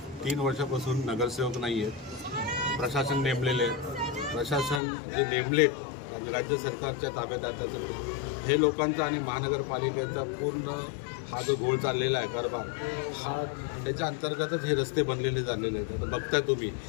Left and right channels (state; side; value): drops out; right; at 4.8 s